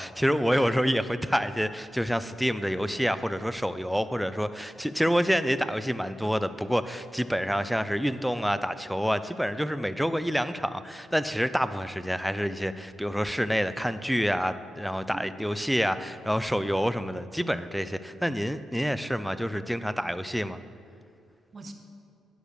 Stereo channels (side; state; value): both; normal; correlation 0.98